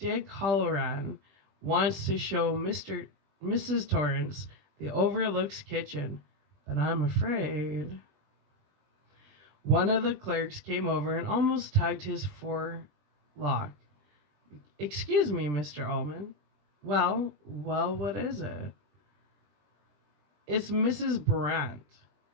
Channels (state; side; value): late; left; 20 ms